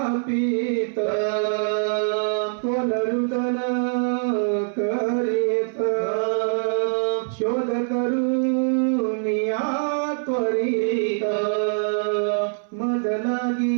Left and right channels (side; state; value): left; silent; 63 dB below the other